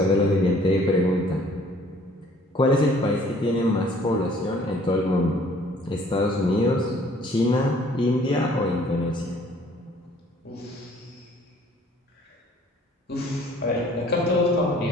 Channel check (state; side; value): normal; both; correlation 0.57